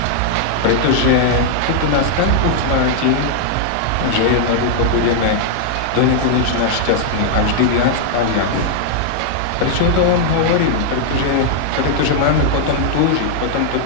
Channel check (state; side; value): different; both; correlation -0.01